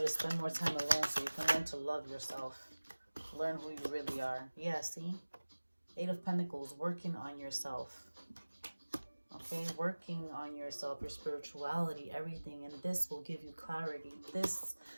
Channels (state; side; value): inverted; both; correlation -1.00